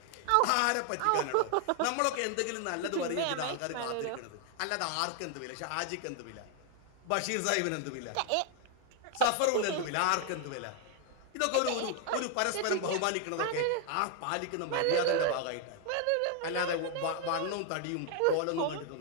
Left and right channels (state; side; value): different; both; correlation 0.00